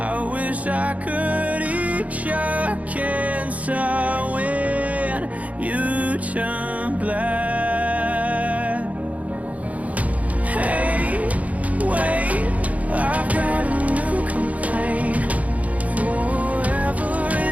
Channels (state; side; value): late; left; 0.070 ms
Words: wish I could eat your cancer when you turn black. Hey, wait, I've got a new complaint. Forever